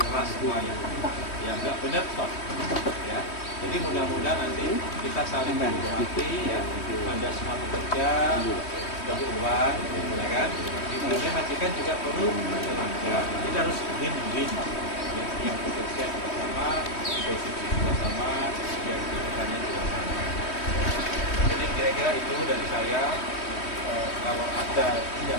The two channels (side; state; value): right; late; 3.1 ms